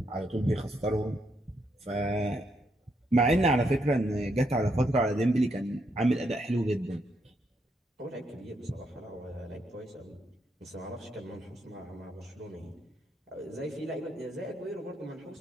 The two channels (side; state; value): both; normal; correlation 0.77